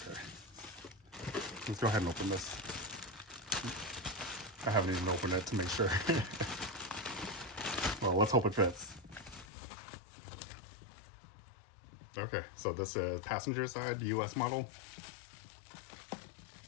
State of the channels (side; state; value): right; drops out; at 9.5 s